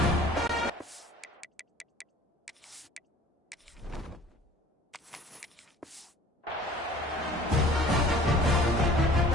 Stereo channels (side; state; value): both; normal; correlation 0.48